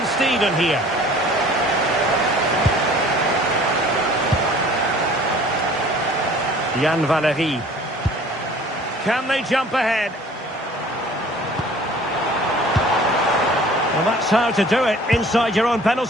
Steven here. Jan Valery. Can they jump ahead? Well, that's how to do it, inside your own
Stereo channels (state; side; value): normal; both; correlation 0.50